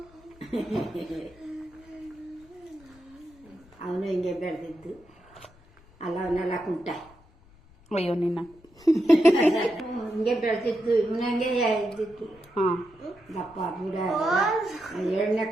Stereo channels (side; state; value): left; noise; rumble, 27 dB below the sound